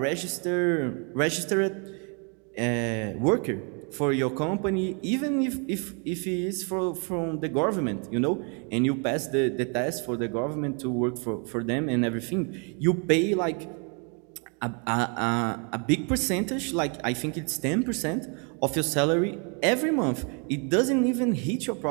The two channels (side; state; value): left; quieter; 37.1 dB